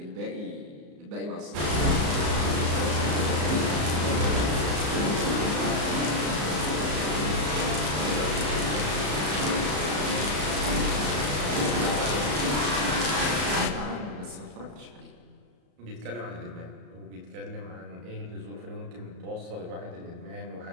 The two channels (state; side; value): late; left; 34 ms